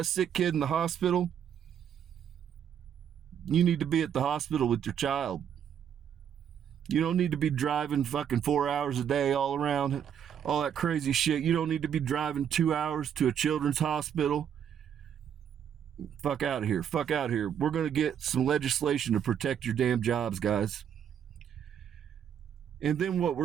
sick kid in the hospital, you need to be at the hospital with your child. You don't need to be driving fucking 4 hours a day all around, all that crazy shit. You don't need to be driving 2 hours to a children's hospital. Fuck out of here. We're going to get some legislation to protect your damn jobs, guys. And then what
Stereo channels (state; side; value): quieter; left; 8.8 dB